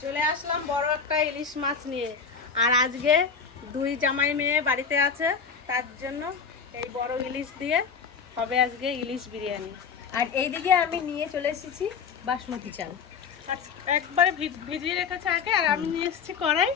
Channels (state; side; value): quieter; right; 5.9 dB